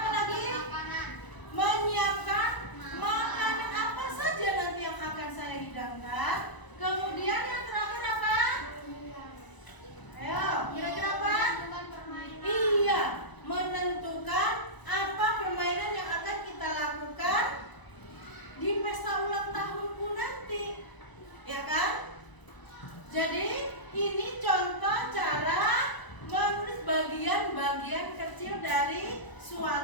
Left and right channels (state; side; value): late; right; 1.0 ms